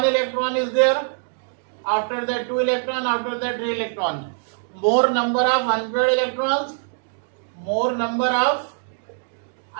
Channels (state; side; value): silent; left; digital silence